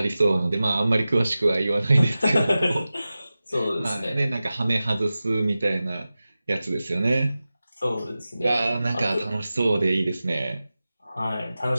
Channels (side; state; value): both; inverted; correlation -0.95